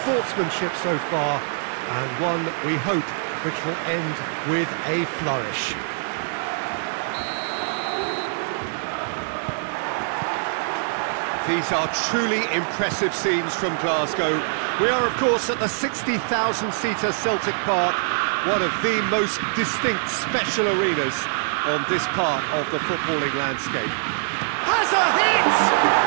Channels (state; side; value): silent; left; digital silence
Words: so far, and one, we hope, which will end with a flourish. These are truly impressive scenes from Glasgow. We are, of course, at the 60,000-seater Celtic Park, one of the most distinct special arenas on this part of the footballing landscape. Has a hit!